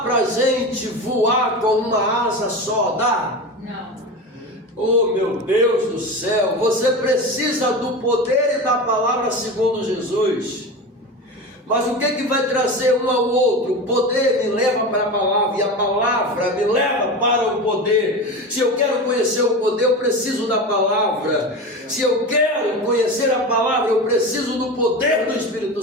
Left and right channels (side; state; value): both; normal; correlation 0.26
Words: para a gente voar com uma asa só, dá? Não. Oh meu Deus do céu, você precisa do poder e da palavra segundo Jesus. Mas o que vai trazer um ao outro? O poder me leva para a palavra e a palavra me leva para o poder. Se eu quero conhecer o poder, eu preciso da palavra. Se eu quero conhecer a palavra, eu preciso do poder do Espírito